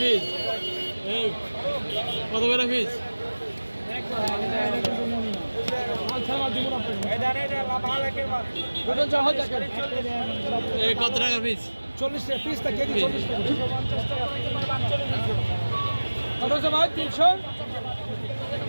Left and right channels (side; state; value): both; inverted; correlation -1.00